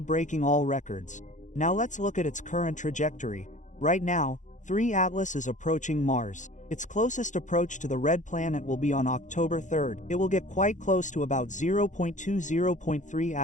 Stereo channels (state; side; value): late; right; 0.36 ms